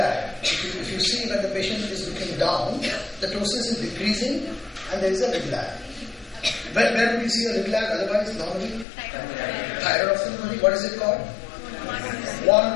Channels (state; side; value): drops out; right; at 8.8 s